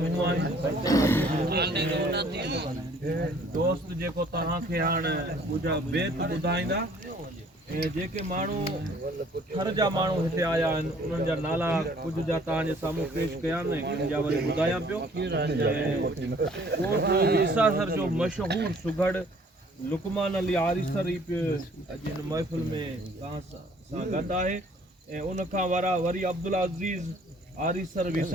आहिनि, दोस्त जेको तव्हांखे हाणे बेत ॿुधाईंदा, ऐं जेके माण्हू हर जा माण्हू हिते आया आहिनि उन्हनि जा नाला कुझु जा तव्हांजे साम्हूं पेश कया आहिनि, जा वरी ॿुधायां पियो। ईसासर जो मशहूरु सुघड़ लुकमान अली आरिसर ई पियो अॼु हिन महफ़िल में तव्हां सां गॾु आहे। ऐं उनखां वरी अब्दुल अज़ीज़ आरिसर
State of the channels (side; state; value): both; normal; correlation 0.57